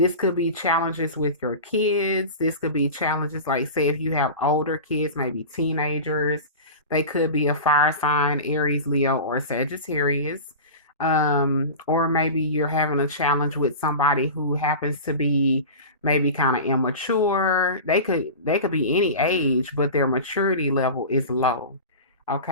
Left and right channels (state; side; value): inverted; both; correlation -0.31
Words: could be challenges with your kids. This could be challenges like, say, if you have older kids, maybe teenagers, they could be a fire sign, Aries, Leo, or Sagittarius. Or maybe you're having a challenge with somebody who happens to be maybe kind of immature. They could be any age, but their maturity level is low.